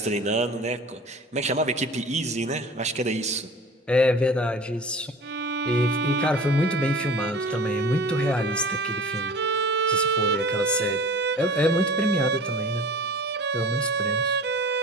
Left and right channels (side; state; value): both; normal; correlation 0.40